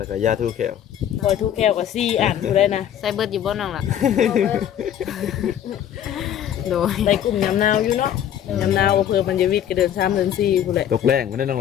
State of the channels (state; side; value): quieter; right; 10.2 dB